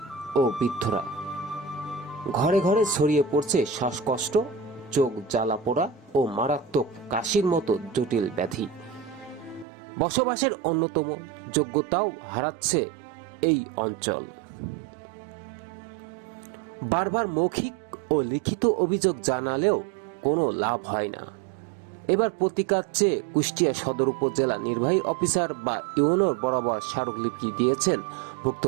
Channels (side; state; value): left; drops out; at 9.7 s